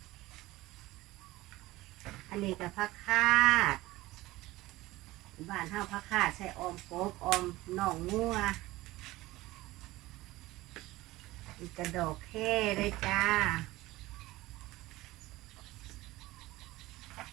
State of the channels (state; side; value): quieter; left; 18.4 dB